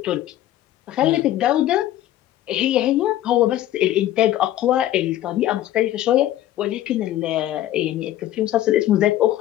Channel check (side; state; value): right; quieter; 13.4 dB